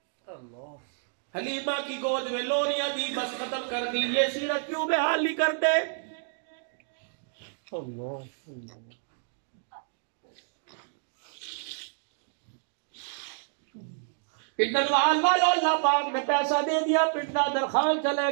حلیمہ کی گود میں لوریاں دی بس ختم کر دی، یہ سیرت کیوں بیان نہیں کرتے؟ پنڈلوال والوں اللہ پاک نے پیسہ دے دیا، پنڈا درخان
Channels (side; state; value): left; silent; digital silence